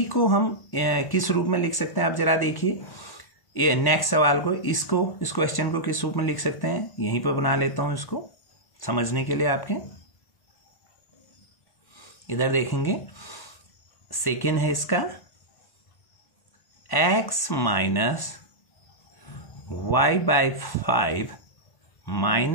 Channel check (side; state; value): right; late; 1.1 ms